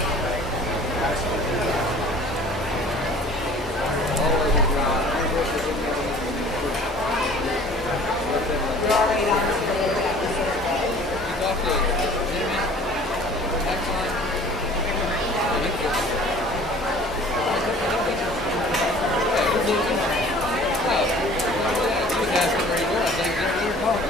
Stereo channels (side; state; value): both; normal; correlation 0.48